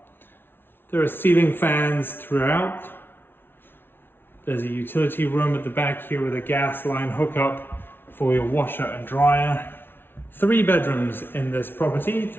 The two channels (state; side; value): late; right; 0.11 ms